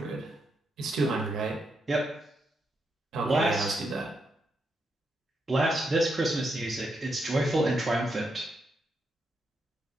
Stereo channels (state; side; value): normal; both; correlation 0.82